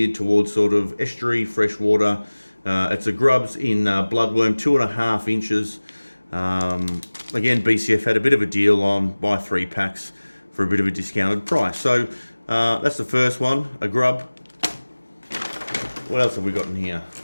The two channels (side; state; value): both; inverted; correlation -1.00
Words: towards sort of estuary, freshwater. It's a GrubZ in Bloodworm, 2.5 inches. Again, BCF had a bit of a deal on buy 3 packs for a bit of a discounted price. So that's the first one, a grub. What else have we got in here?